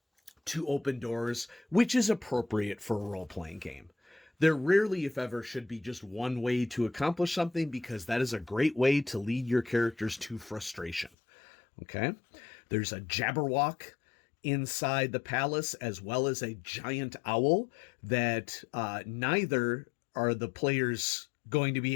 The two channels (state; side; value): drops out; right; at 11.1 s